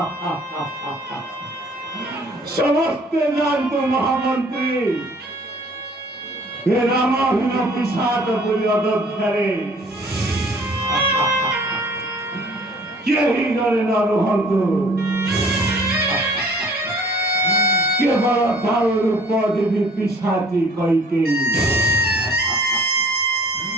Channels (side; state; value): both; normal; correlation 0.54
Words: সমস্তে জানতো মহামন্ত্রী এ রামাহীন পিসাচ পুরী অযোধ্যারে কেহি করে ন রুহন্তু কেবল তার উপদেবী পিসাচি কইকেই